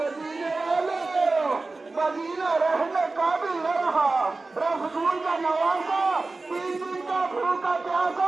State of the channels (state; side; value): quieter; left; 3.5 dB